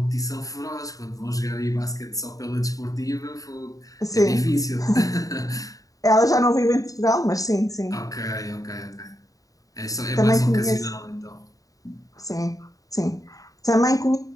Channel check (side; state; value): right; late; 0.17 ms